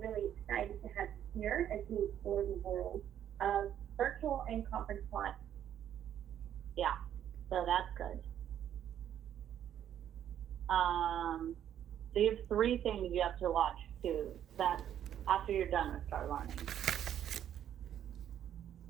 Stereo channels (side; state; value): left; quieter; 10.3 dB